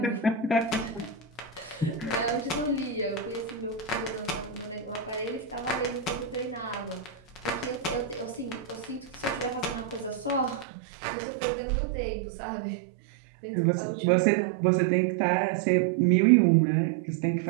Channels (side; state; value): left; drops out; at 10.7 s